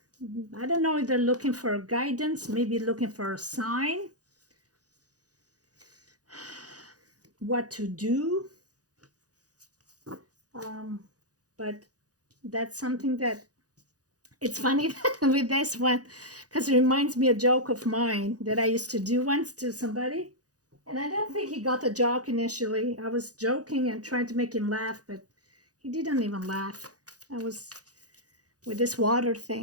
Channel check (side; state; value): left; late; 0.67 ms